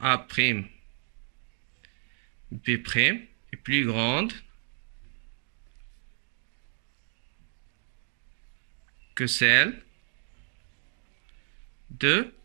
A', B' est plus grande que celle de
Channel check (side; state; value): left; silent; digital silence